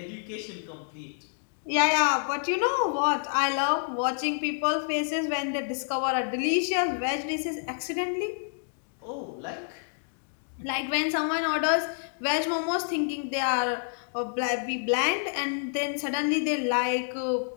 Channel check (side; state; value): right; silent; digital silence